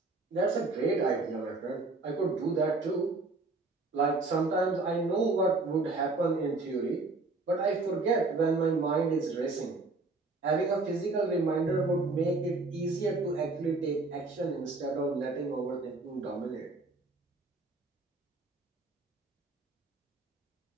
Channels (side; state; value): left; quieter; 3.4 dB